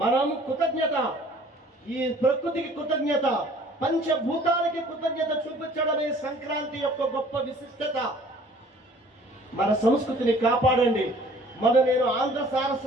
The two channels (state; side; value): normal; both; correlation 0.53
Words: మనం కృతజ్ఞత, ఈ ప్రకృతికి కృతజ్ఞత, పంచభూతాలకి కృతజ్ఞత చూపించడమే సంక్రాంతి యొక్క గొప్ప విశిష్టత. మన సంస్కృతిని కాపాడండి. నేను ఆంధ్ర